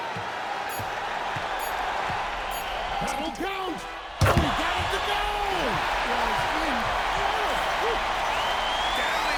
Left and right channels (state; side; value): identical; both; correlation 1.00